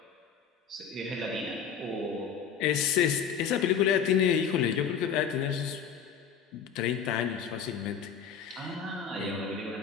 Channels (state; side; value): quieter; right; 7.3 dB